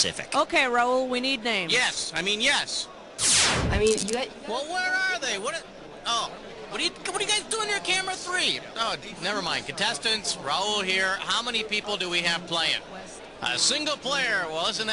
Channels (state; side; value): identical; both; correlation 1.00